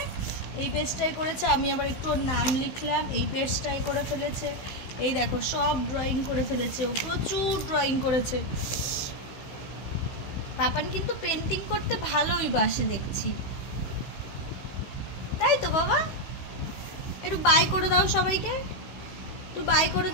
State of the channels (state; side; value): late; right; 15 ms